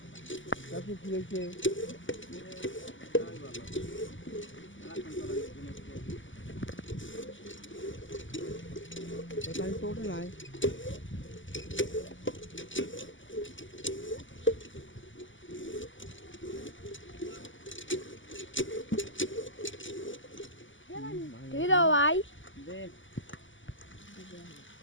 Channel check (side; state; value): right; late; 0.56 ms